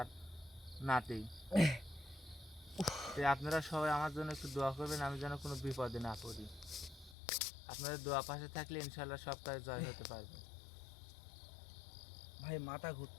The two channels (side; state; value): right; drops out; at 7.2 s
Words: নাতি। তো আপনারা সবাই আমার জন্য একটু দোয়া করবেন, আমি যেন কোনো বিপদে না পড়ি। আপনাদের দোয়া পাশে থাকলে ইনশাল্লাহ সব কাজে জয় হতে পারবে। ভাই মাথা